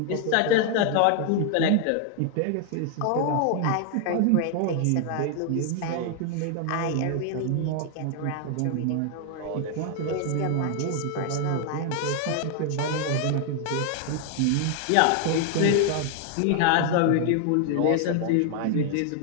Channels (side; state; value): both; different; correlation 0.00